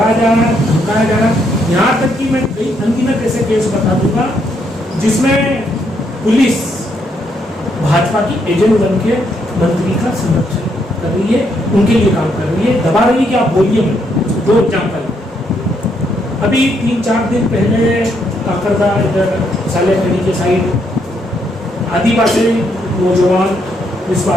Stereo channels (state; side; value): normal; both; correlation 0.75